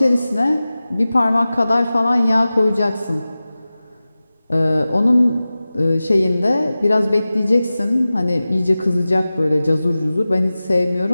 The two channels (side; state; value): both; inverted; correlation -0.96